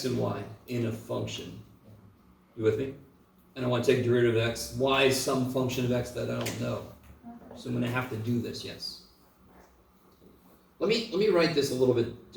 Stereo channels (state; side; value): identical; both; correlation 1.00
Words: and y in a function. You with me? And I want to take derivative of x. Y is some function of x that I don't know. So I'm going to have to do this, yes. Let me write this a little bit